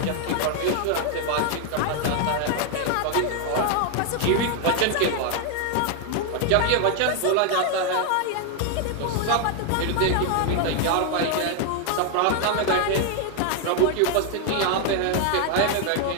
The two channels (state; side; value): different; both; correlation 0.00